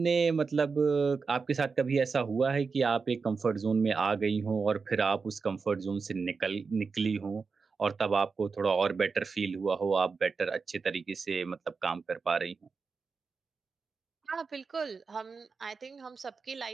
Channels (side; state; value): left; quieter; 4.9 dB